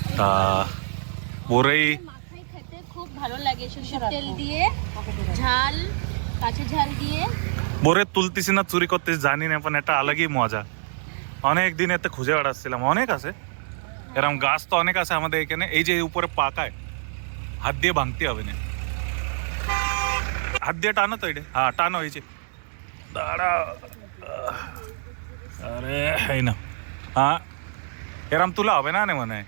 তা বড়ই মাখাই খেতে খুব ভালো লাগে, সরষের তেল দিয়ে, ঝাল, কাঁচা ঝাল দিয়ে। বড়ই তুলতেছি না চুরি করতেছি জানি না, પણ একটা আলাদই মজা। অনেক দিন এতে খুঁজে বেড়াচ্ছিলাম, অনেক আছে এরকম গাছ, তো অনেক আছে আমাদের এখানে। এই যে উপরে পাকায়, হাত দিয়ে ভাঙতে হবে না, হাত দিয়ে টানো তো, এটা হ্যাঁ টানো, হয়েছে দাঁড়া। আরে এই না, হ্যাঁ এরম তুলা হবে না মানে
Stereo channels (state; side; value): silent; left; digital silence